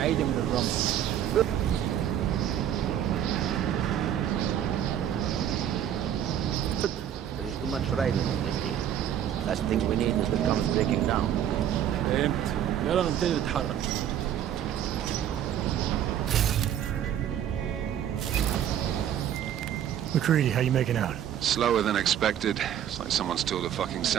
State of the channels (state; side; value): quieter; left; 10.2 dB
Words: من الرمل. There is too much riding on this deal. Last thing we need is the comms breaking down. فهمت. يلا نبتدي نتحرك. McCready, how you making out? Slower than expected. It's like someone's tilled a fucking